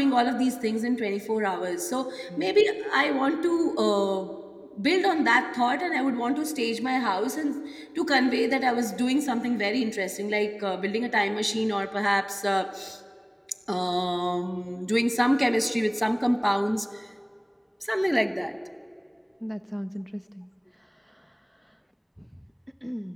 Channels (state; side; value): identical; both; correlation 1.00